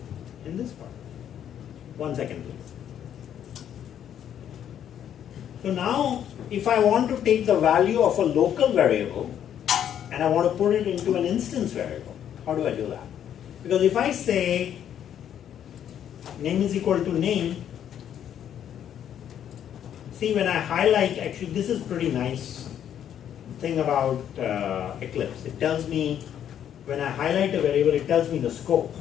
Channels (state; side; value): quieter; right; 9.7 dB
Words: in this part. 1 second, please. So now, if I want to take the value of a local variable and I want to put it into an instance variable, how do I do that? Because if I say name is equal to name, see when I highlight, actually this is pretty nice thing about Eclipse. It tells me, when I highlight a variable, it tells me the scope